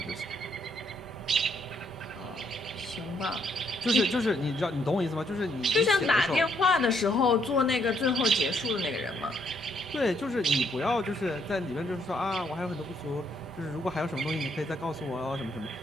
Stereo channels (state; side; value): normal; both; correlation 0.71